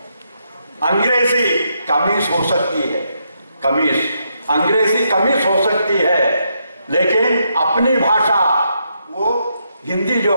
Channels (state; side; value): inverted; both; correlation -0.79